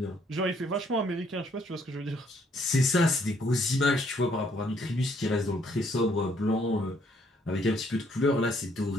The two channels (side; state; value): both; normal; correlation 0.67